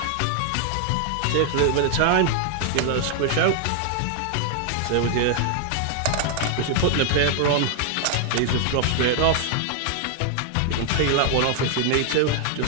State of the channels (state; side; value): different; both; correlation 0.00